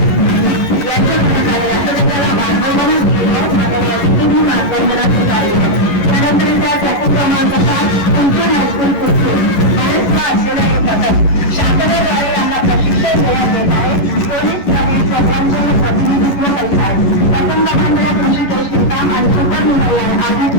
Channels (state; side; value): late; right; 11 ms